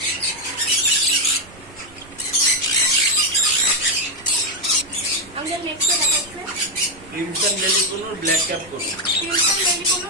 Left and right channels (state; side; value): noise; right; rumble, 23 dB below the sound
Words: আমাদের নেক্সট দেখাচ্ছে ক্রিমসন বেলি কোনোর ব্ল্যাক ক্যাপ করুন। ক্রিমসন বেলি কোনো